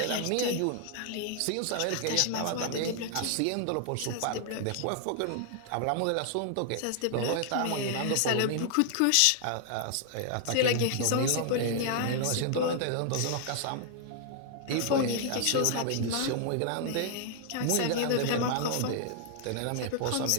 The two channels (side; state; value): both; different; correlation 0.00